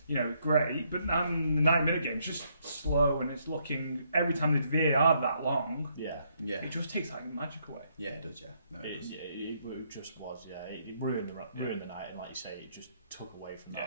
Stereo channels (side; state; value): both; inverted; correlation -0.72